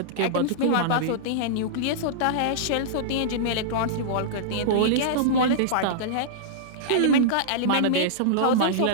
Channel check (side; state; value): both; different; correlation -0.03